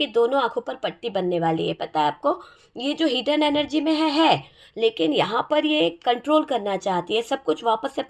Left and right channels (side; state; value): both; identical; correlation 1.00